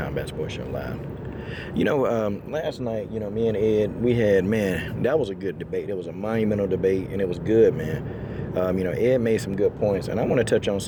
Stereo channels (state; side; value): identical; both; correlation 1.00